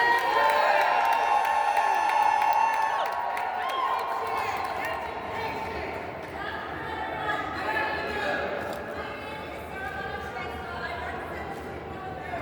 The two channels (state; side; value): identical; both; correlation 1.00